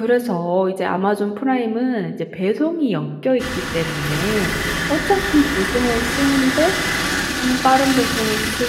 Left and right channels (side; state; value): both; identical; correlation 1.00